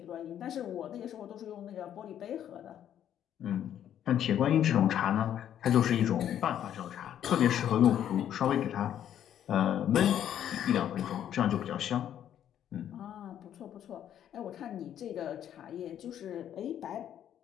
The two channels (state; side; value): quieter; right; 10.3 dB